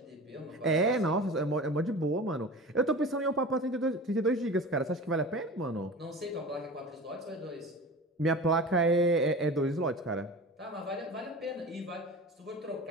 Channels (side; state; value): both; normal; correlation 0.35